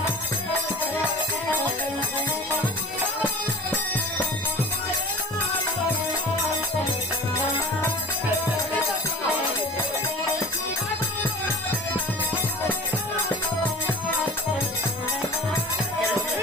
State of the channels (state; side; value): normal; both; correlation 0.39